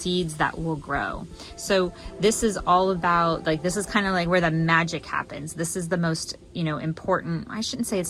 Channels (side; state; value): both; identical; correlation 1.00